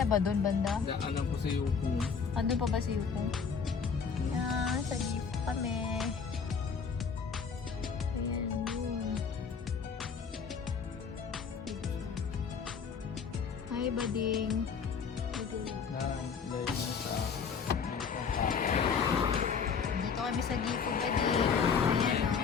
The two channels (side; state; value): right; quieter; 6.0 dB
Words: ba doon banda? Daanan ko sa iyo kung Andun pa ba si Yukong? Yan, sa Gifu kami. Ayan, yun. Hi, bading. Dito kami sa Gifu, bading. Ayan, o.